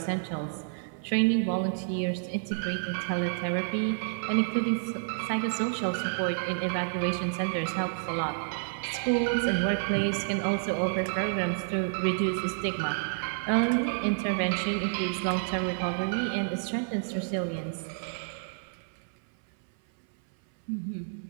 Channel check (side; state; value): left; silent; 58 dB below the other